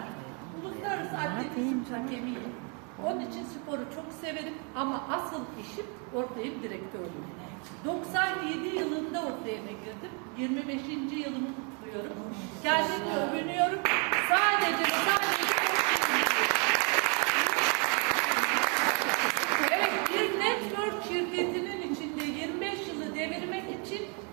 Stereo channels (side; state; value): left; quieter; 35.9 dB